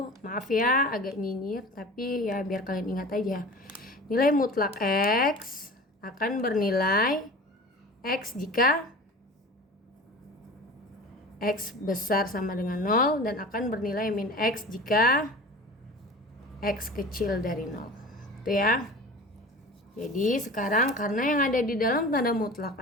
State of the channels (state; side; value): normal; both; correlation 0.38